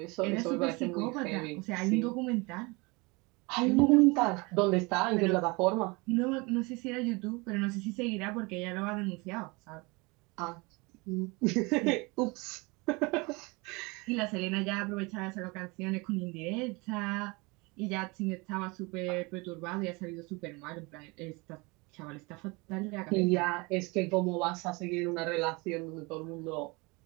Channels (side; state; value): left; quieter; 26.5 dB